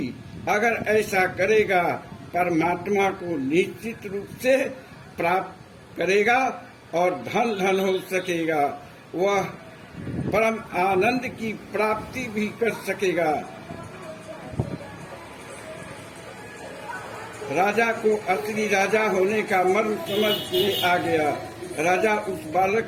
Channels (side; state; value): both; identical; correlation 1.00